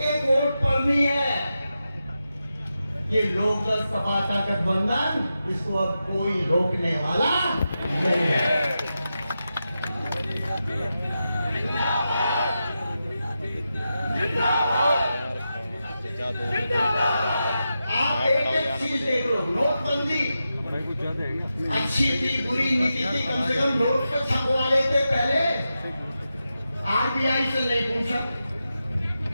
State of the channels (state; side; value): inverted; both; correlation -0.90